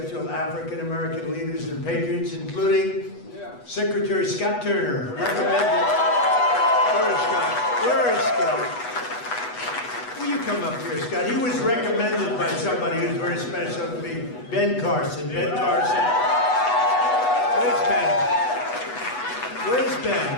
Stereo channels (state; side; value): late; right; 8.1 ms